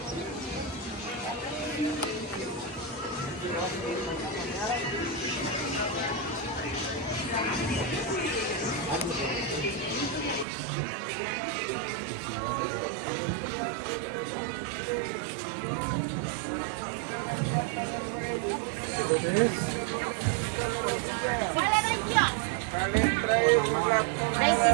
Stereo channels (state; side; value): drops out; left; at 10.5 s